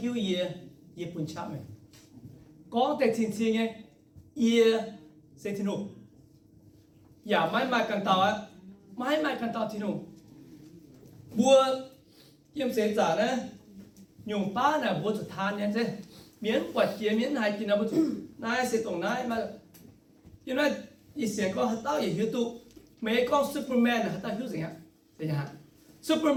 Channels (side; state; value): both; identical; correlation 1.00